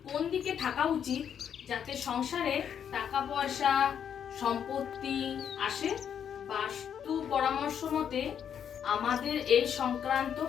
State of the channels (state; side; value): quieter; right; 8.4 dB